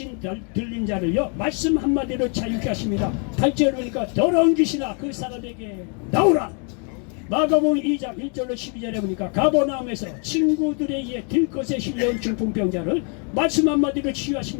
들린 자를요 말씀 한마디로 자유케 하십니다. 8절을 보니까 더러운 귀신아 그 사람에게 나오라. 마가복음 2장 1절로 12절에 보니까 가버나움에서 친구들에 의해 들것에 실려온 중풍병자를 말씀 한마디로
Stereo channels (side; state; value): right; quieter; 39.2 dB